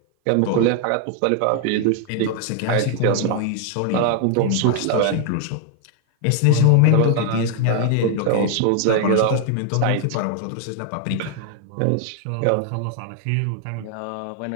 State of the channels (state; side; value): different; both; correlation 0.00